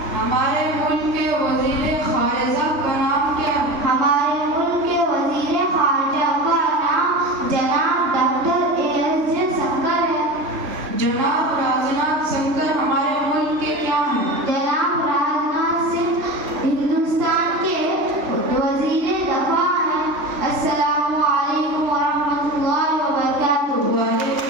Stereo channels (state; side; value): late; left; 3.4 ms